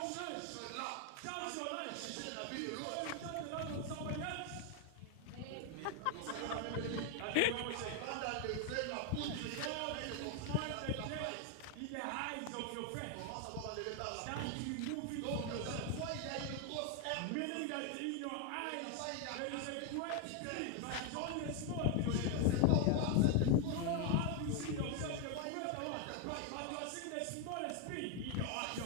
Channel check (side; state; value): both; different; correlation 0.01